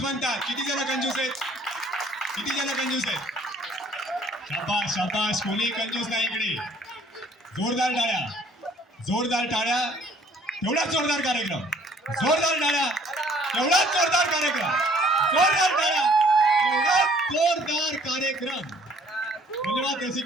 म्हणतात. किती जण कंजूस आहेत? किती जण कंजूस आहेत? शाबास शाबास, कोणी कंजूस नाही इकडे. जोरदार टाळ्या, जोरदार टाळ्या. एवढाच जोरदार कार्यक्रम, जोरदार टाळ्या, एवढाच जोरदार कार्यक्रम, जोरदार टाळ्या, एवढाच जोरदार कार्यक्रम. धन्यवाद रसिक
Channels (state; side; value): normal; both; correlation 0.59